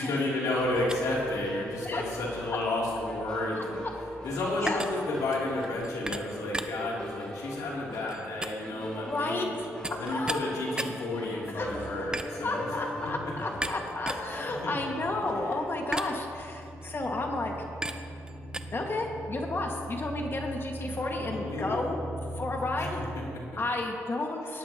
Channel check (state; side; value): normal; both; correlation 0.72